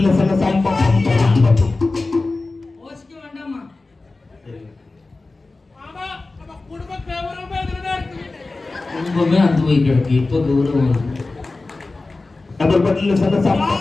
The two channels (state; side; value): quieter; right; 3.4 dB